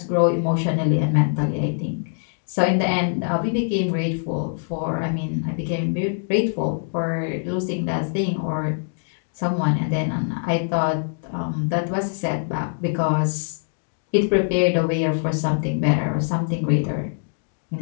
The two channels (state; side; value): silent; right; digital silence